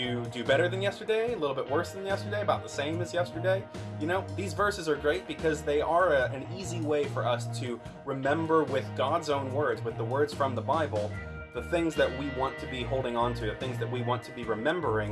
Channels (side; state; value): both; identical; correlation 1.00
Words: do better than yesterday? A little bit worse than yesterday? About the same as yesterday? You know, these verses are great because they are an easy way for us to remember with God's own words, with the words from the Bible, the things that we want to be holding on to, the things that we want to be